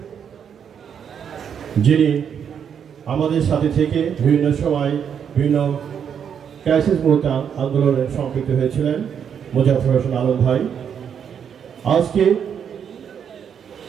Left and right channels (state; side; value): quieter; left; 7.9 dB